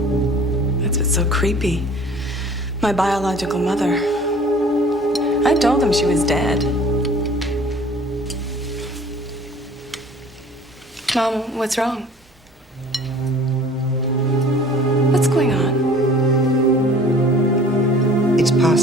That's what's so creepy. My biological mother. I told him she was dead. Mom, what's wrong? What's going on? It's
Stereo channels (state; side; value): normal; both; correlation 0.49